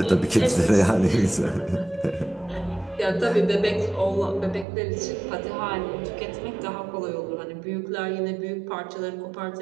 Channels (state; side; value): drops out; left; at 4.7 s